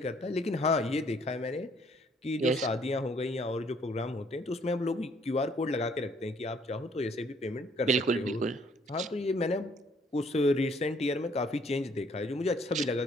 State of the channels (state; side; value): normal; both; correlation 0.64